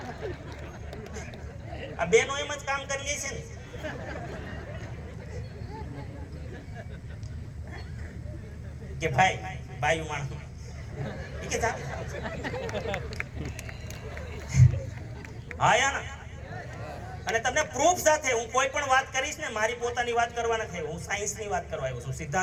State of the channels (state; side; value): identical; both; correlation 1.00